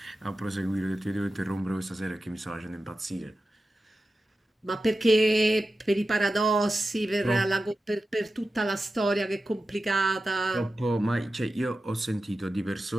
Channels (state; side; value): normal; both; correlation 0.92